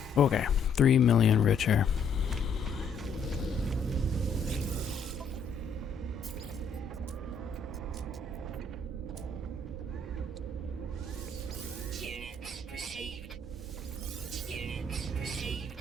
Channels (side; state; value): right; quieter; 4.2 dB